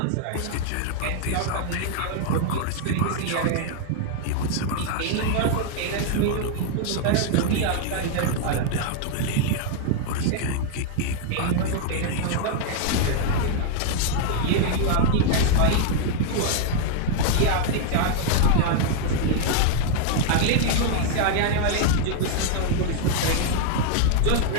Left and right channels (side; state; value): both; different; correlation 0.00